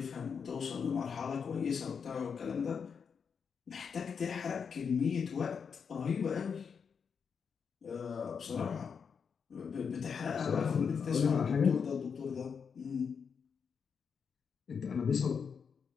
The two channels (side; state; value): right; quieter; 6.3 dB